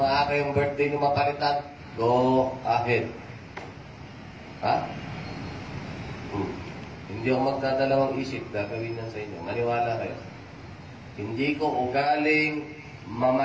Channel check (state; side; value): identical; both; correlation 1.00